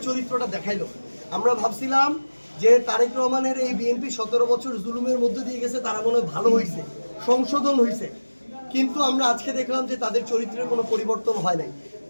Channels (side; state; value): both; inverted; correlation -1.00